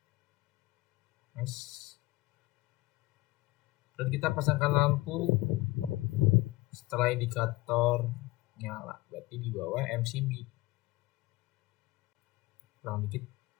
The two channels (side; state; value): right; quieter; 19.8 dB